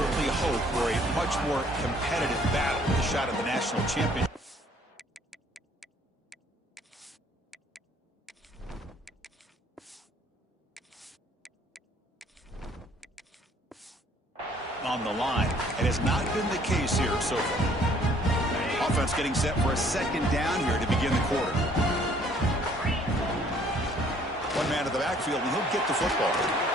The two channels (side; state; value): both; normal; correlation 0.60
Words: hope for a much more competitive battle with a shot at the national championship. on the line. It has not been the case here so far. Offense getting set for a second down here to begin the quarter. One man to the backfield, and he'll get the football.